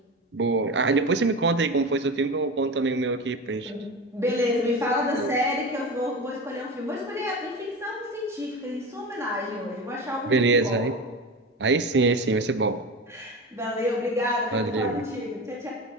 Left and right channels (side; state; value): both; normal; correlation 0.27